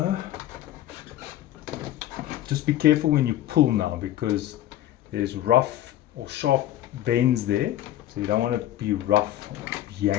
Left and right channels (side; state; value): right; quieter; 13.2 dB